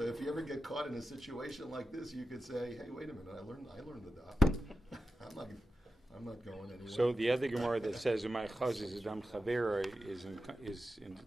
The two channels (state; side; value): normal; both; correlation 0.90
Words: if you ever get caught in a situation like this, you could say, "Hey, wait a minute! I learned the daf. I'm not going anywhere." So the other Gemara that says "Umay Chaz is Adam Chavera"